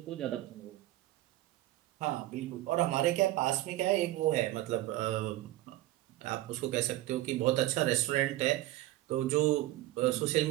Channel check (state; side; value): quieter; left; 16.0 dB